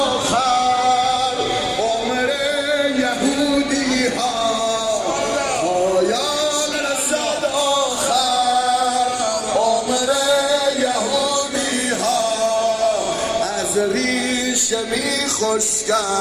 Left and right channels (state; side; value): identical; both; correlation 1.00